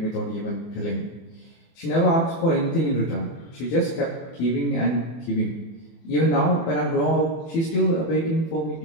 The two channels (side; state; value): right; late; 24 ms